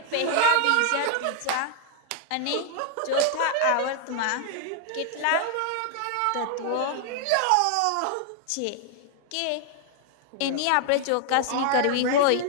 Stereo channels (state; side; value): different; both; correlation 0.00